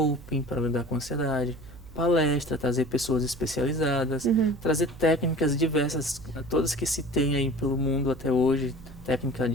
para lidar com a ansiedade, palestra, trazer pessoas especializadas, trazer técnicas diversas, todas que se tem aí pelo mundo até hoje, técnica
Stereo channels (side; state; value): right; noise; hum, 18 dB below the sound